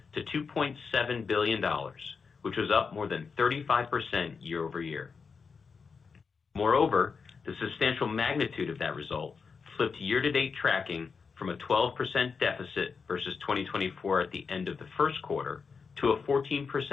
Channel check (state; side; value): quieter; right; 5.4 dB